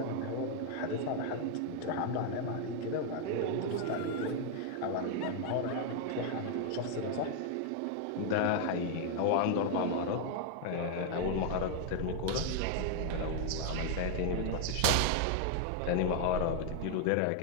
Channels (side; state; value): both; different; correlation 0.00